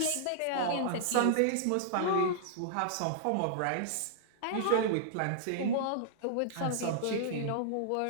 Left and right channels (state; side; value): different; both; correlation -0.02